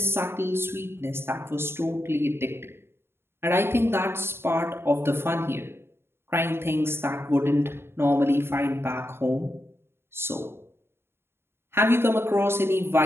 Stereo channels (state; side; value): late; left; 0.11 ms